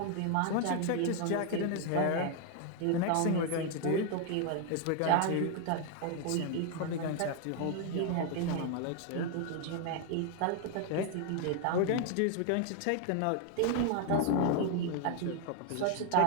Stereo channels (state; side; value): different; both; correlation 0.00